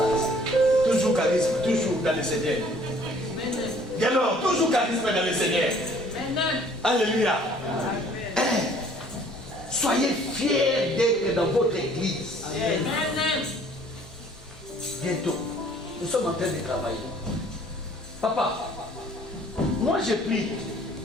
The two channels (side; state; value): both; normal; correlation 0.56